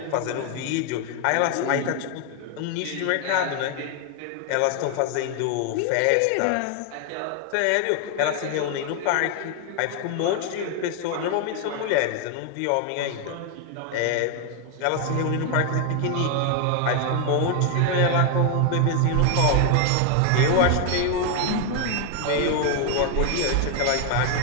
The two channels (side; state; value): both; different; correlation 0.01